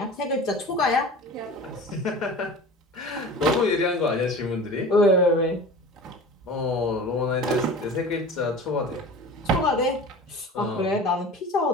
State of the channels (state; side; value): normal; both; correlation 0.38